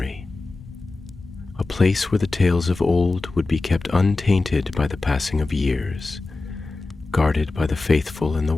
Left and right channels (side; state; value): right; quieter; 3.4 dB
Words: a place where the tales of old would be kept untainted by the passing of years, guarded by the faithful and the